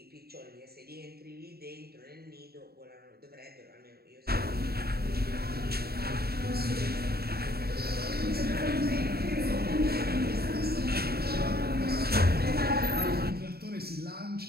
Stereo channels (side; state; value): left; late; 0.45 ms